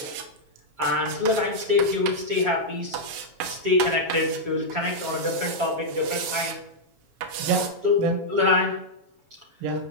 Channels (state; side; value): late; left; 7.3 ms